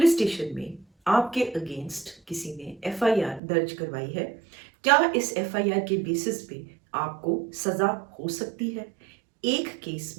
स्टेशन में आपके अगेंस्ट किसी ने एफआईआर दर्ज करवाई है, क्या इस एफआईआर के बेसिस पे आपको सजा हो सकती है? एक केस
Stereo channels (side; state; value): left; drops out; at 3.4 s